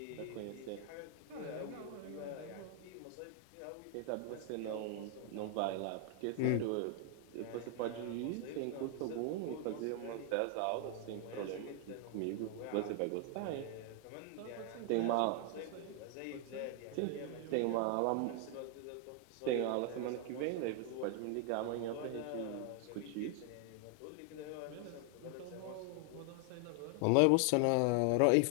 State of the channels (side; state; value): both; different; correlation 0.00